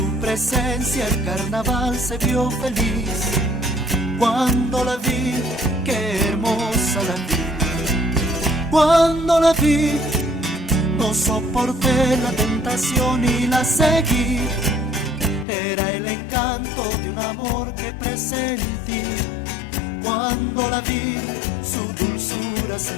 presencia el carnaval se vio feliz. Cuando la vi, qué hermosa la vi. Cuando la vi, no soporté la tentación y la seguí. Era el encanto de un amor que presentí. Cuando la vi, su dulzura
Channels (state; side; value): drops out; right; at 15.5 s